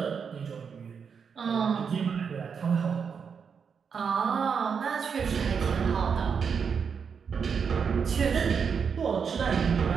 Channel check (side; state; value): left; quieter; 6.4 dB